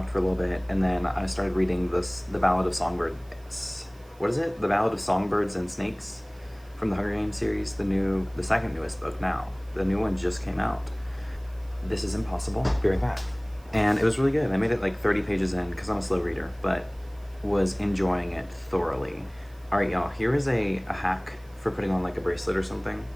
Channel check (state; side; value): noise; right; hiss, 29 dB below the sound